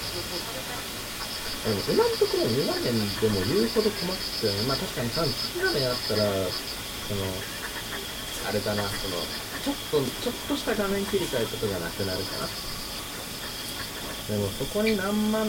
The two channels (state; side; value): identical; both; correlation 1.00